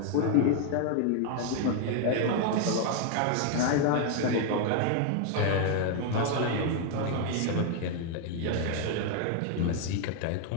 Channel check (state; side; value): different; both; correlation 0.00